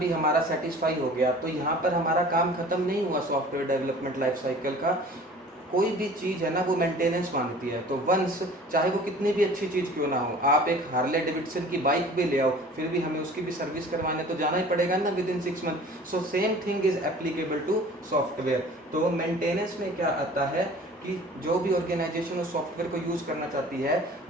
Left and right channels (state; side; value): normal; both; correlation 0.45